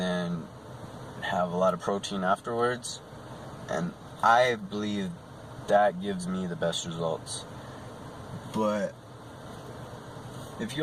have a lot of protein afterwards, and I believe that gives me the best results. But if you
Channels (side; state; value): both; identical; correlation 1.00